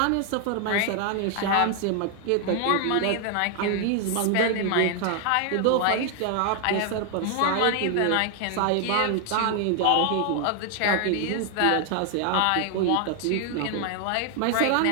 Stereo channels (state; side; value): different; both; correlation 0.00